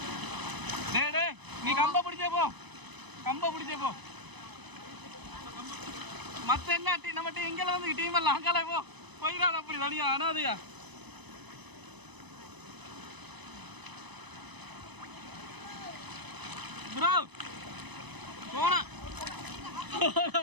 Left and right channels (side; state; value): left; late; 1.0 ms